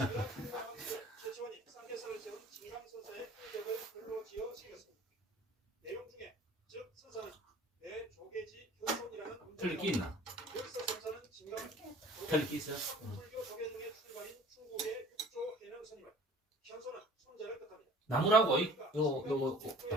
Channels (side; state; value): both; normal; correlation 0.48